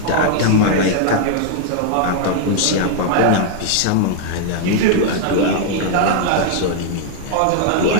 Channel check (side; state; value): both; different; correlation 0.00